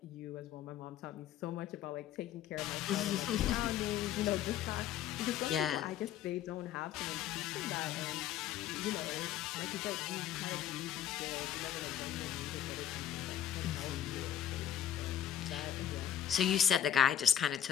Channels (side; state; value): right; quieter; 10.5 dB